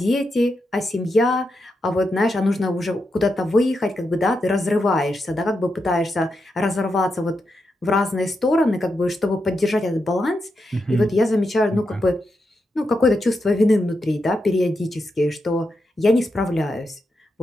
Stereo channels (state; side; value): normal; both; correlation 0.85